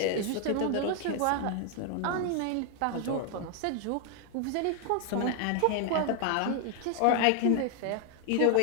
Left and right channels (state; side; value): different; both; correlation 0.00